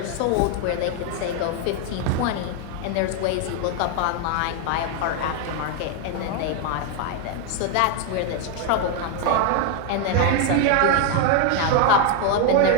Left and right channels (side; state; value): both; different; correlation 0.01